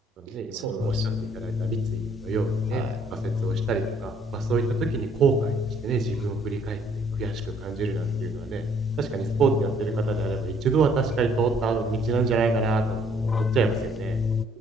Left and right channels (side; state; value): both; normal; correlation 0.63